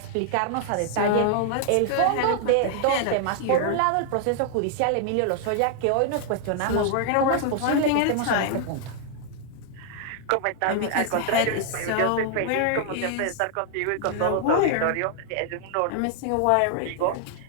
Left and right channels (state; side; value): different; both; correlation 0.00